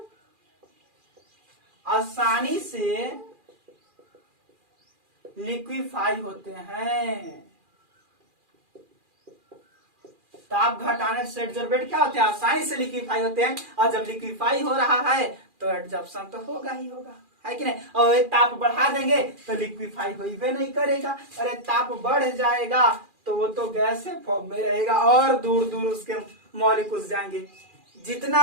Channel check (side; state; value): left; late; 2.4 ms